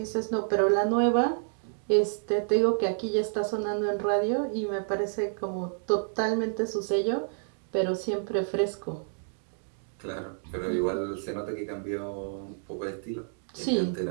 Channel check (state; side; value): silent; left; digital silence